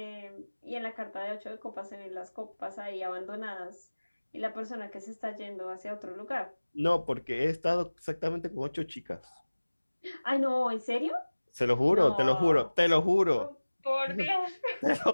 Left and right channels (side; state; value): both; inverted; correlation -1.00